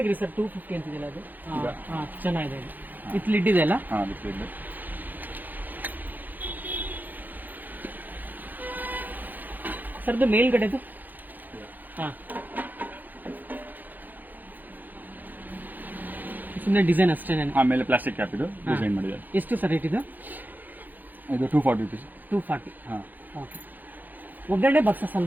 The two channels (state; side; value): late; left; 0.085 ms